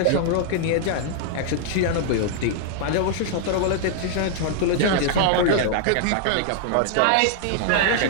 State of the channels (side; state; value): both; different; correlation -0.01